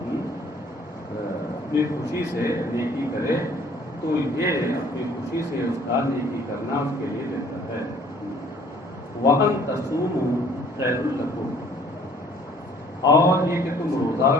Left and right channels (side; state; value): both; normal; correlation 0.57